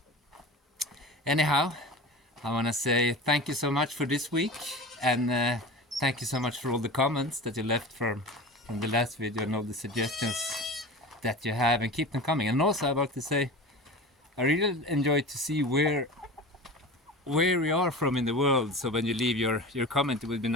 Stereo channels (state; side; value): normal; both; correlation 0.33